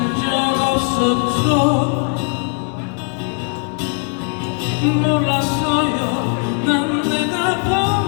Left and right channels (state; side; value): quieter; right; 39.5 dB